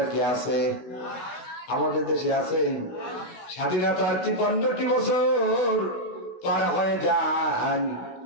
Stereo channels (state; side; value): late; right; 16 ms